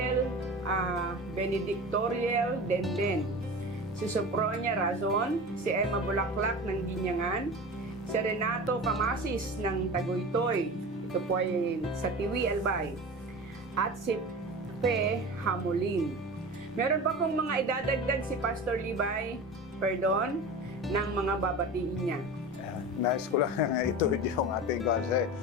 Benedictorial Denden, si Sopronia Razon, si Emma Bulaklak ng Ginyangan, si Renato Camasis ng Tagoytoy, ito po ay sa Tiwi Albay, at si Pe Hamulin. Meron pa pong mga idadagdag si Pastor Libay ng mga babatiin niya. Nais ko lang ito yung ating kasi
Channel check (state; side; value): normal; both; correlation 0.32